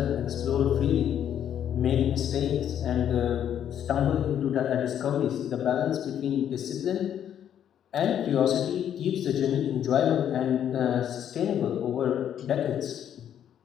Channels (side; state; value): right; quieter; 9.8 dB